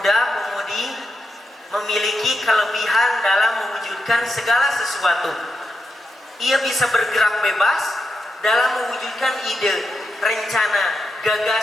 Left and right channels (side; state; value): both; normal; correlation 0.86